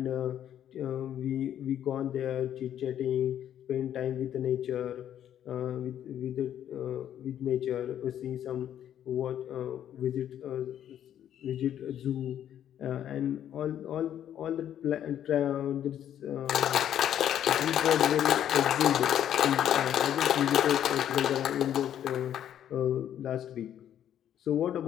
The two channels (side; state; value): right; quieter; 10.5 dB